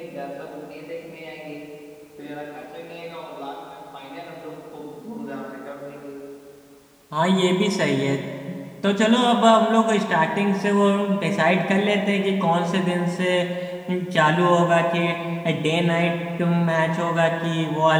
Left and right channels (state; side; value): identical; both; correlation 1.00